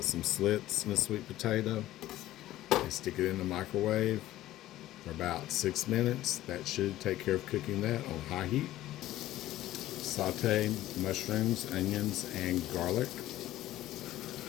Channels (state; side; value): quieter; right; 14.8 dB